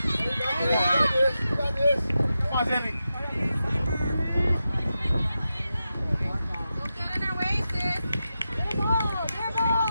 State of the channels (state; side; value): inverted; both; correlation -0.90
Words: You got this. Come on, Zilly. Don't get in their way, sis.